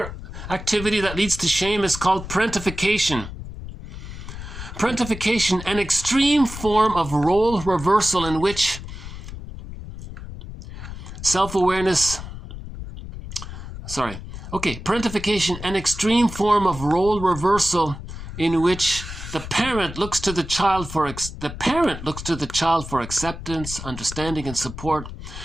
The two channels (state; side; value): noise; left; rumble, 10 dB below the sound